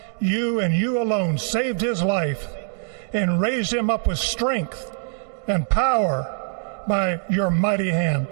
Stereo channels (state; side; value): silent; left; 63 dB below the other